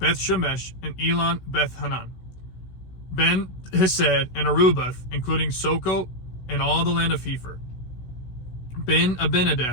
and Elon Beth-Hanan, Ben-Hesed and Arubath, including Soko and all the land of Hepher,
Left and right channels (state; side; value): late; right; 16 ms